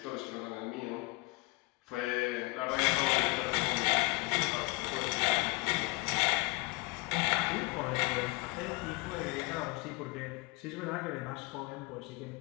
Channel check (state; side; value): quieter; right; 24.5 dB